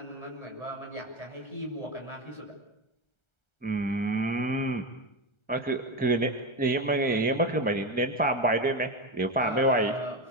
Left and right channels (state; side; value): late; right; 1.3 ms